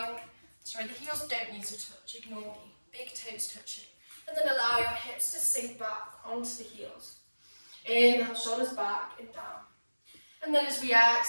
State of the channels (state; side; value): inverted; both; correlation -1.00